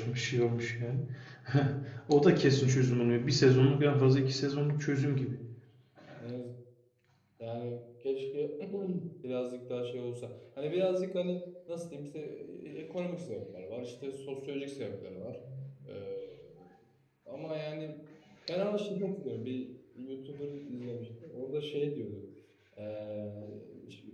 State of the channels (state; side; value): identical; both; correlation 1.00